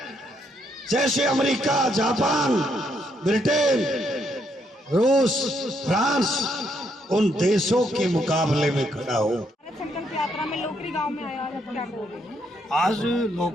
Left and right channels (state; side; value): normal; both; correlation 0.74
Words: जैसे अमेरिका, जापान, ब्रिटेन, रूस, फ्रांस, उन देशों के मुकाबले में खड़ा हो। भारत संकल्प यात्रा में लोकरी गांव में आया, आप क्या कहोगे? आज